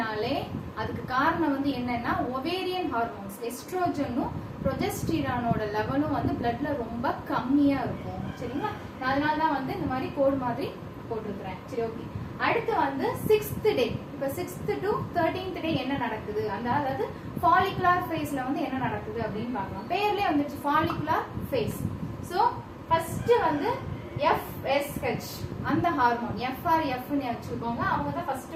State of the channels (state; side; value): identical; both; correlation 1.00